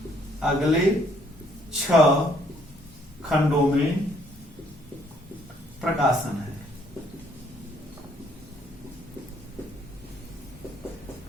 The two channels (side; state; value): both; normal; correlation 0.66